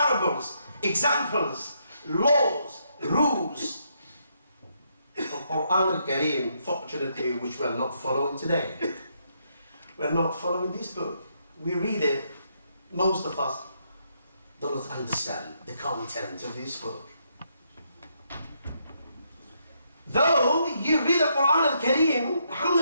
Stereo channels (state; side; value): inverted; both; correlation -0.76